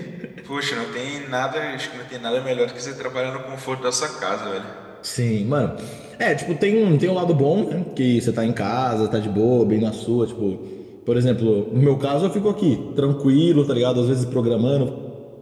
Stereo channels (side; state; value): both; identical; correlation 1.00